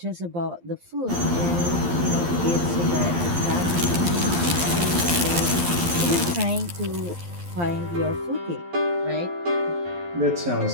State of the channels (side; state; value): left; late; 12 ms